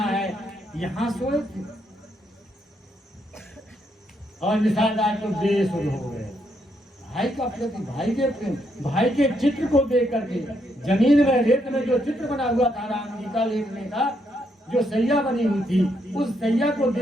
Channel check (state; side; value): normal; both; correlation 0.76